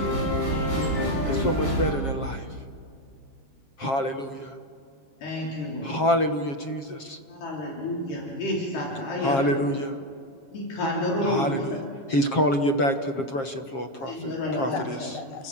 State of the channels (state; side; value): late; right; 7.4 ms